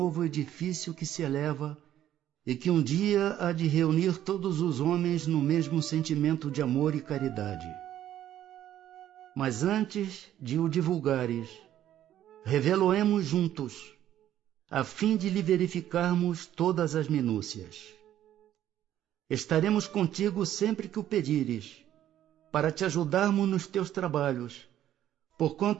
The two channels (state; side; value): quieter; left; 11.8 dB